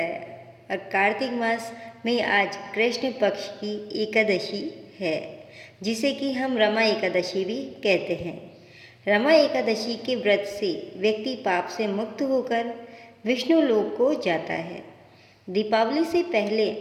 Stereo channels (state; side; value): identical; both; correlation 1.00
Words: और कार्तिक मास में आज कृष्ण पक्ष की एकादशी है, जिसे कि हम रमा एकादशी भी कहते हैं। रमा एकादशी के व्रत से व्यक्ति पाप से मुक्त होकर विष्णु लोक को जाता है। दीपावली से पहले